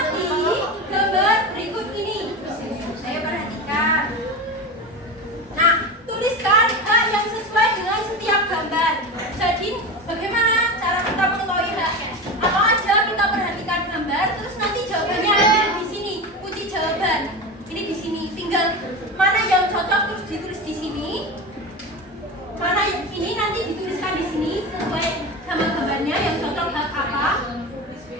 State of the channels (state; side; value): normal; both; correlation 0.24